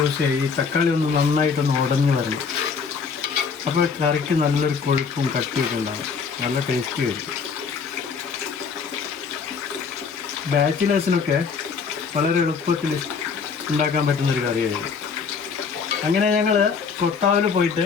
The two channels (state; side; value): quieter; right; 5.6 dB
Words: ചെയ്യാം. ഈ തക്കാളി ഒന്ന് നന്നായിട്ടൊന്ന് ഉടഞ്ഞ് വരണം. അപ്പോൾ കറിക്ക് നല്ലൊരു കൊഴുപ്പും കട്ടിയൊക്കെ ഉണ്ടാകും. നല്ല ടേസ്റ്റി ആയിരിക്കും. ബാച്ചിലേഴ്സിനൊക്കെ വളരെ എളുപ്പത്തിൽ ഉണ്ടാക്കാൻ പറ്റുന്നൊരു കറിയായിരുന്നു. അങ്ങനെ ഞങ്ങൾ കൊത്താവിൽ പോയിട്ട്